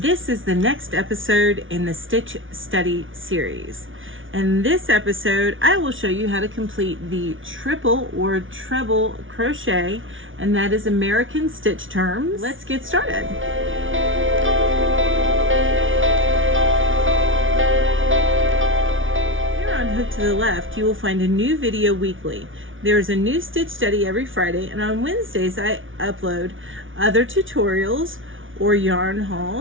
this is the next episode in the Stitch Study series. In this episode, I will show you how to complete the triple or treble crochet, and that is American stitch terms. Let's get started. Hook to the Left, you will find a new video weekly. There is a new stitch study every Friday, and on Wednesdays I upload other tutorials or yarn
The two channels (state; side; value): late; left; 0.57 ms